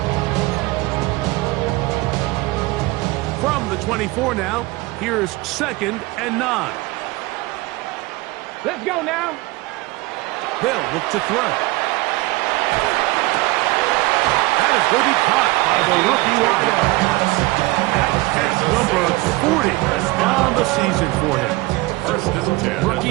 From the 24 now, here's second and 9. Let's go now. They'll look to throw. That is going to be caught by the rookie wideout. That's number 40 on the season for him. First and 10.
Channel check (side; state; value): left; quieter; 21.5 dB